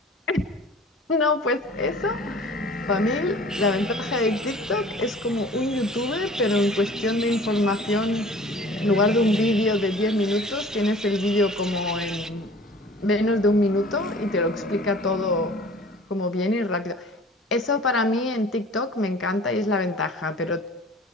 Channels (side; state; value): both; normal; correlation 0.46